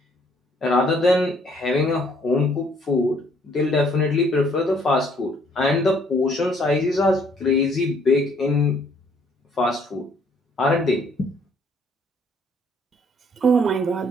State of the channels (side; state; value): both; normal; correlation 0.64